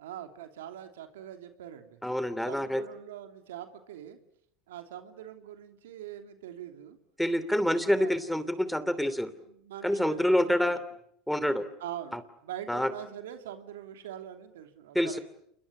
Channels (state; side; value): normal; both; correlation 0.90